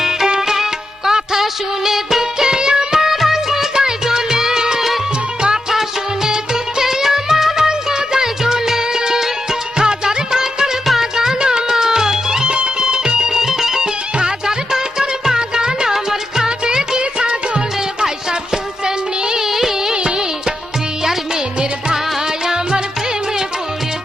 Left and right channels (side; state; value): both; normal; correlation 0.86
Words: কথা শুনে দুঃখে আমার অঙ্গ যায় জ্বলে, কথা শুনে দুঃখে আমার অঙ্গ যায় জ্বলে। হাজার টাকার বাগান আমার, হাজার টাকার বাগান আমার খাবে কি ছাগলে। ভাই সাহেব শুনছেন নি, প্রিয়ার মেনের ভাই আমার প্রেমে